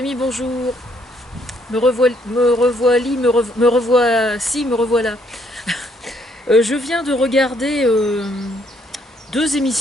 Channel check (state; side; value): normal; both; correlation 0.69